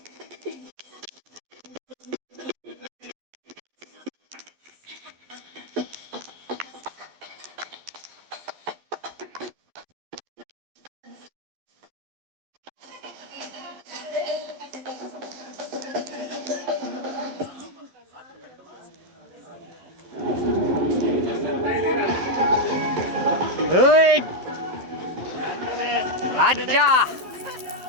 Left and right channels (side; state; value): left; late; 12 ms